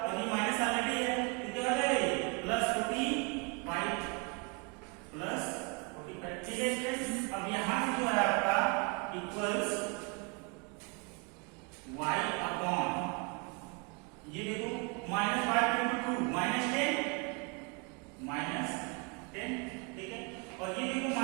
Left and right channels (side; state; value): left; quieter; 32.0 dB